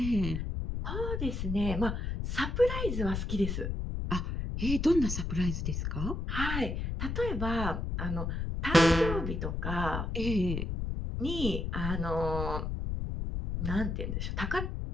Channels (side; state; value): left; noise; rumble, 2 dB below the sound